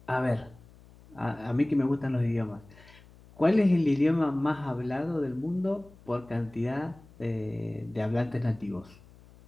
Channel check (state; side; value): noise; left; hum, 24 dB below the sound